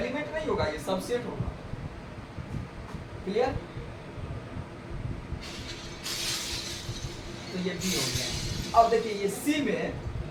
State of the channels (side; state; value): both; identical; correlation 1.00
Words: नहीं होगा, ये सबसेट होगा। क्लियर, तो ये बी हो गया। अब देखिए ये सी में